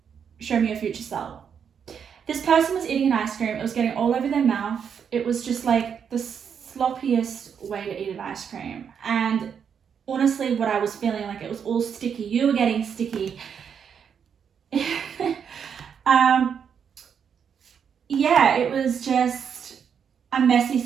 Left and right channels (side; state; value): left; quieter; 7.4 dB